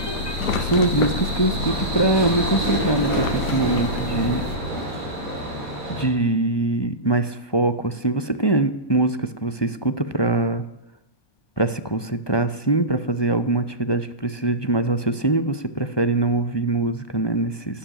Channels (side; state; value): right; late; 1.2 ms